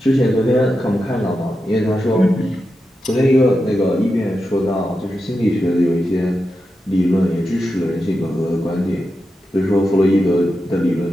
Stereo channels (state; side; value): normal; both; correlation 0.89